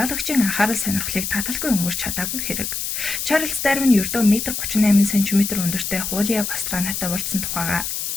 анхаарал сонирхлыг таталгүй өнгөрч чадаагүй хэрэг. Чарльз Дарвин ердөө 1.38 см өндөртэй Хулиа Пастранатай уулзсан тухайга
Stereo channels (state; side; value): noise; left; hiss, 3 dB below the sound